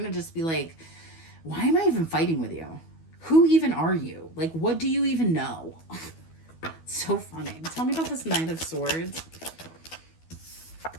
to just be like, why am I even fighting with you? Who even are you? Like, what do you even know? So funny. Tell me about this Knight of Swords.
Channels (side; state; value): right; late; 12 ms